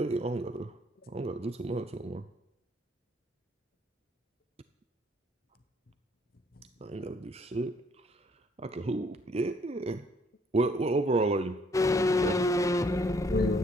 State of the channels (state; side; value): normal; both; correlation 0.64